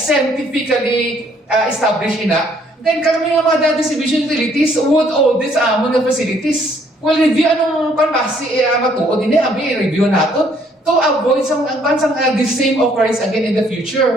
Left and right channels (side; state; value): both; normal; correlation 0.65